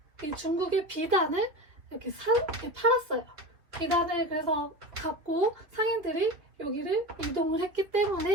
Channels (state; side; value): late; left; 3.1 ms